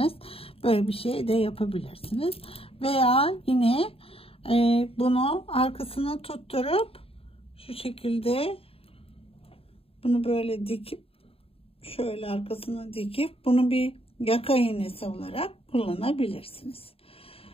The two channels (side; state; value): right; late; 0.27 ms